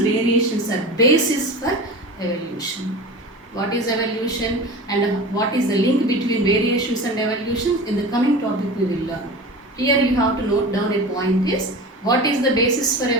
variations are basis for evolution. What is evolution and what is the link between variations and evolution? In the coming topic we will learn. Here you have to note down a point is, what is the basis for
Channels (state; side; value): normal; both; correlation 0.33